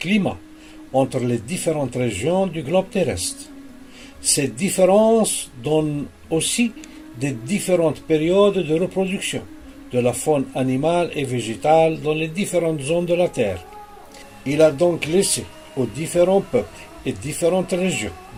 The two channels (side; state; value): both; identical; correlation 1.00